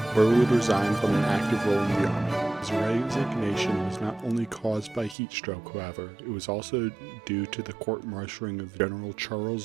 Burr would resign from an active role in the army. His resignation was not only caused by heat stroke, however, it was also due to the court-martialing of General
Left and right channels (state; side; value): drops out; left; at 5.2 s